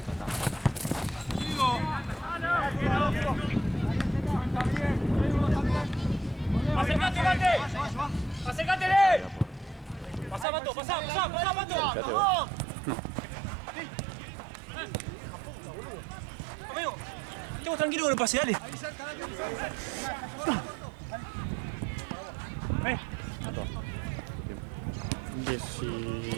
¡Acércate, Mate! ¡Acércatele! ¡Pasá, Mato! ¡Pasá, pasá, pasá, Mato! ¡Vamos! Amigo, estemos tranquilos con el pase, dale. Ven.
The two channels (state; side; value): drops out; left; at 10.5 s